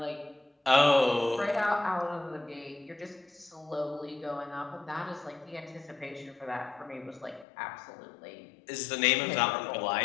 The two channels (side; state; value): right; drops out; at 7.5 s